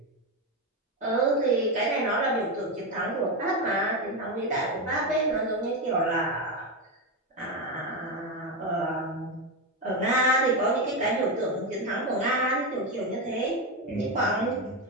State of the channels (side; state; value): both; normal; correlation 0.11